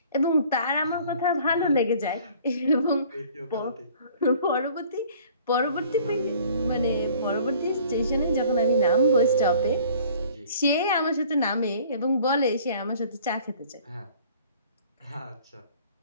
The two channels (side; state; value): both; inverted; correlation -0.52